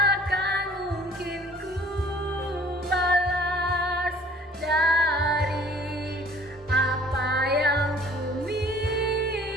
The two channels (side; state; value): both; normal; correlation 0.52